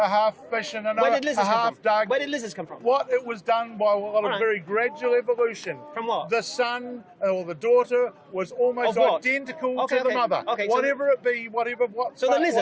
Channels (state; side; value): identical; both; correlation 1.00